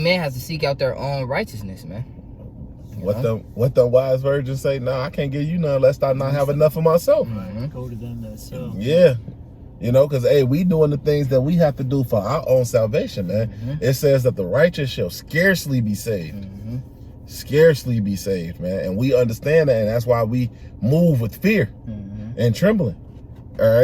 has to seek out their own righteousness, man. What the wise virgins say? No, I can't give you none lest I not have enough of myself. Go to them that sell. Yeah. You know, because, hey, we doing the things that we have to do for our own salvation, man. It says that the righteous shall scarcely be saved. Scarcely be saved, man. And we understand that, and that's why we move with fear and trembling. All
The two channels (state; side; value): identical; both; correlation 1.00